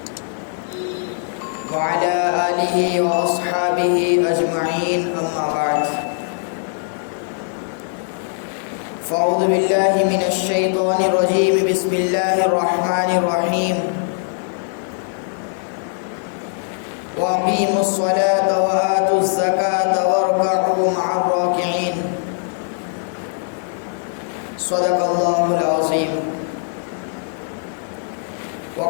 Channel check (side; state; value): right; silent; digital silence